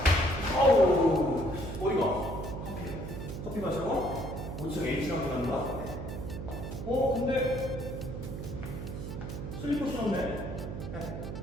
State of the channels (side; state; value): right; noise; hum, 7 dB below the sound